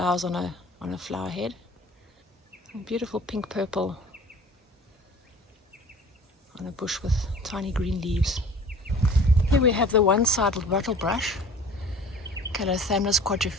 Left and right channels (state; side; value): normal; both; correlation 0.46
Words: on a flower head. A beautiful pink purple on a bush with tiny green leaves. Here we have the one-sided wattlebrush, Calothamnus